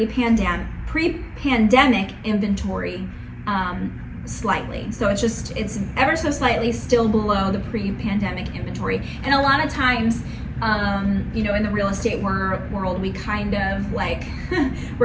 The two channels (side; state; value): both; identical; correlation 1.00